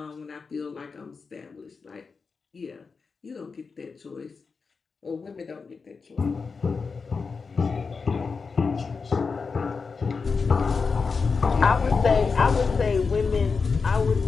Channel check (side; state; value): right; quieter; 4.9 dB